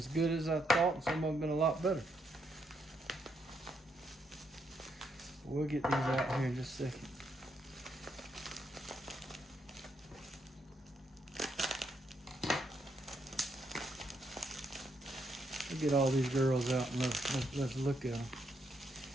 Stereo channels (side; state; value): both; normal; correlation 0.77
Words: good as I thought, and some of them have been a lot better. We'll get these out here in just a second. We'll get all these girls out and let's look at them.